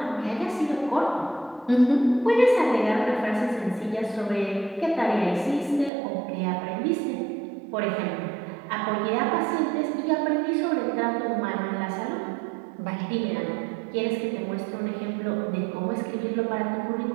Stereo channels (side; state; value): left; drops out; at 5.9 s